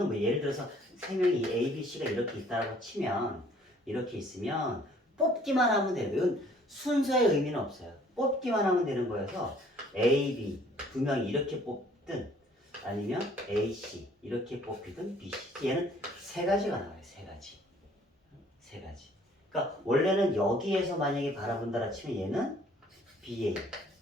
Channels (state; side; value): normal; both; correlation 0.58